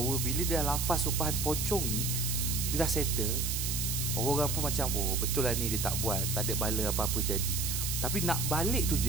bila dia lafaz sumpahan pocong ni, dia dah settle, orang-orang pun macam, oh betul lah ni dia tak buat, tak ada bala apa-apa jadi. Tapi nak balik tu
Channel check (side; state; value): right; noise; hiss, 1 dB below the sound